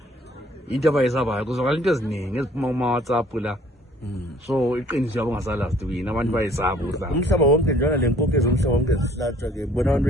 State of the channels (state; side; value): normal; both; correlation 0.57